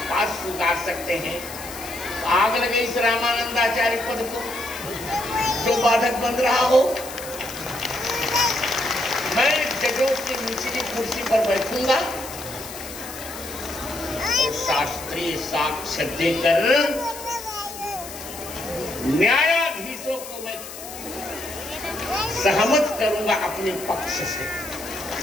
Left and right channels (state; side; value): noise; left; hiss, 12 dB below the sound